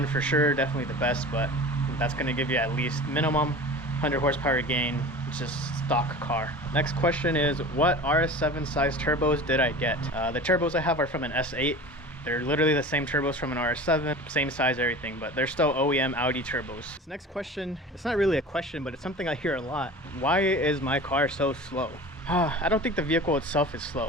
for sure, definitely the best, but that's gonna give you at least minimum 100 horsepower gain. It's just stock car. Next question is, what RS7 size turbos did I get? The turbos I have are from an S8. They're literally the same turbos from an RS7, same size, everything, but they're still OEM Audi turbos. This next question, it's not really a question, but it's something I hear a lot. Why is my car so slow? I don't think the vehicle itself is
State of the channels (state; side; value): normal; both; correlation 0.37